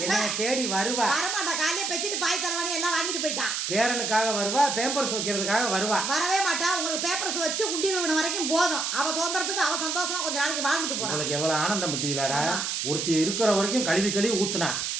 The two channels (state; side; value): noise; right; hiss, 1 dB below the sound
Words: என்னைய தேடி வருவா. வரமாட்டா. காலையில பெச்சிட்டு பாய் தரவானி எல்லாம் வாங்கிட்டு போயிட்டான். பேரனுக்காக வருவா, பேப்பர்ஸ் வைக்கிறதுக்காக வருவா. வரவே மாட்டா. உங்களுக்கு பேப்பர்ஸ் வச்சு குண்டி விழுவன வரைக்கும் போதும். அவ சுதந்திரத்துக்கு அவ சந்தோஷமா கொஞ்ச நாளைக்கு வாழ்ந்துட்டு போறான். உங்களுக்கு எவ்வளவு ஆனந்தம் பத்தியிலடா. ஒருத்தி இருக்கிற வரைக்கும் கழுவி ஊத்துனா.